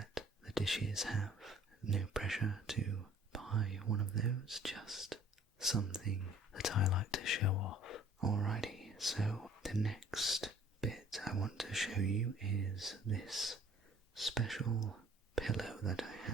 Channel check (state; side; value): normal; both; correlation 0.54